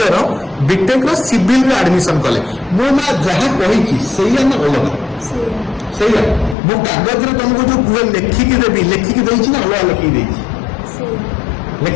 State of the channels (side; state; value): right; drops out; at 6.6 s